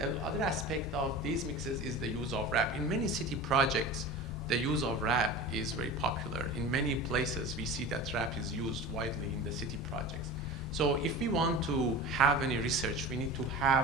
other aspect of these mixes is the use of wrap. In many city projects, the use of wrap is very popular. In many places, we see that wrap is used widely in the city projects. So if we want to have any research, we need to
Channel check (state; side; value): normal; both; correlation 0.33